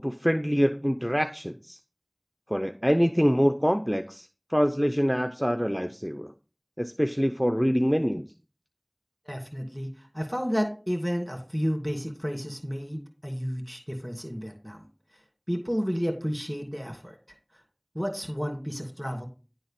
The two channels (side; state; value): both; identical; correlation 1.00